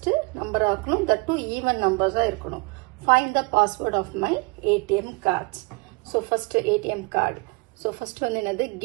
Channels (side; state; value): left; quieter; 28.0 dB